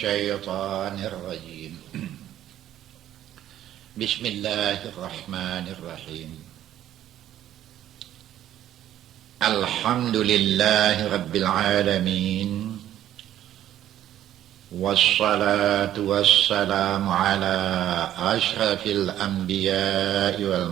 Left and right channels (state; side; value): quieter; left; 12.0 dB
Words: الرجيم بسم الله الرحمن الرحيم الحمد لله رب العالمين والصلاة والسلام على أشرف الأنبياء